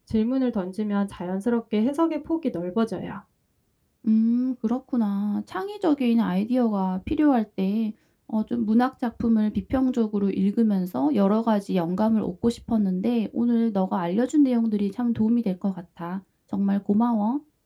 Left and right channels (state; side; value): identical; both; correlation 1.00